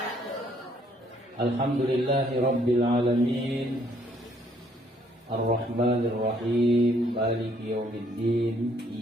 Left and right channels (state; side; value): normal; both; correlation 0.66